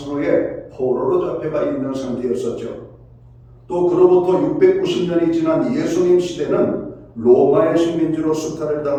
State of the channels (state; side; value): identical; both; correlation 1.00